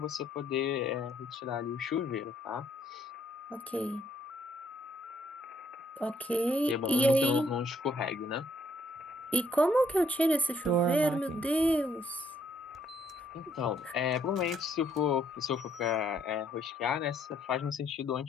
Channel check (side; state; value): both; normal; correlation 0.69